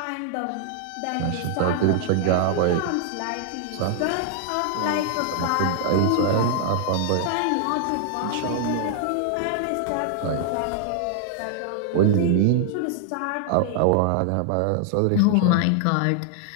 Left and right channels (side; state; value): both; different; correlation 0.00